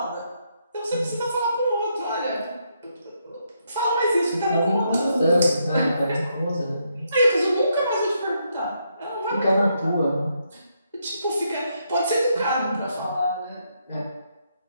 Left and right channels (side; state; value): both; inverted; correlation -0.77